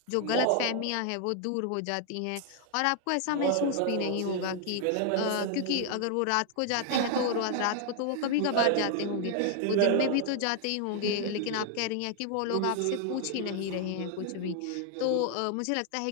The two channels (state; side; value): different; both; correlation 0.00